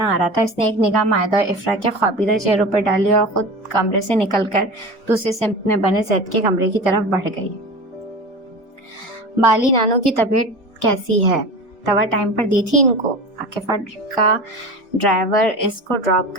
آ رہا تھا۔ اس نے ایک نگاہ مائدہ اور افرا کے خوابیدہ چہروں پر ڈالی اور خود کمرے سے نکل کر دوسری سمت میں بنے زید کے کمرے کی طرف بڑھ گئی۔ بالی نانو کی طبیعت کیسی ہے؟ دوا ٹائم پر دی تھی ان کو؟ عاقفہ کا ڈرائیور اس کو ڈراپ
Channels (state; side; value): normal; both; correlation 0.32